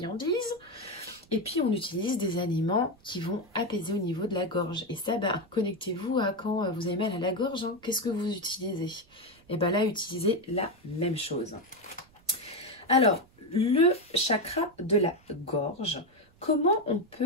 Et puis on utilise des aliments qui vont apaiser au niveau de la gorge. Et ça, connectez-vous à quand vous avez mal à la gorge, hein. Qu'est-ce que vous utilisez? Et bien là, utilisez la même chose. Alors, le chakra de la gorge, comment on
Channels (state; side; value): noise; right; rumble, 29 dB below the sound